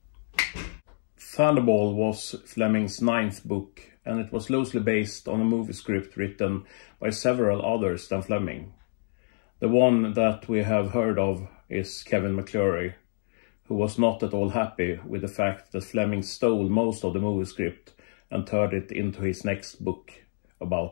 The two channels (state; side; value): silent; right; digital silence